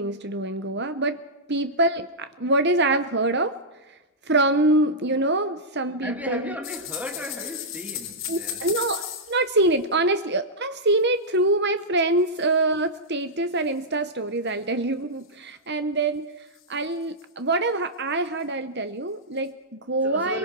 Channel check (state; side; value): normal; both; correlation -0.10